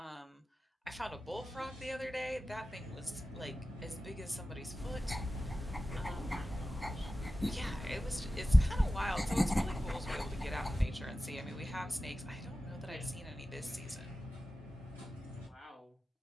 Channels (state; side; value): normal; both; correlation 0.94